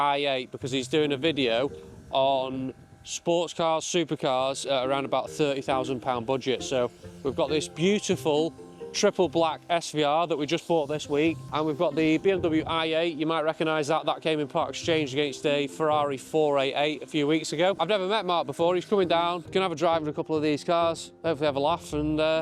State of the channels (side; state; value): both; identical; correlation 1.00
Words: because he's doing a video on sports cars, supercars at around about £30,000 budget. So we've got this beautiful triple black SVR that we just bought this week, and we've got the BMW i8. You might recognise that. That came in part exchange against a Ferrari 488 a few weeks ago. I've never met Mark before. He's coming down. Gonna have a drive in a couple of these cars, hopefully have a laugh